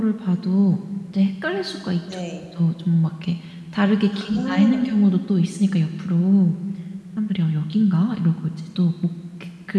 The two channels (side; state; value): both; identical; correlation 1.00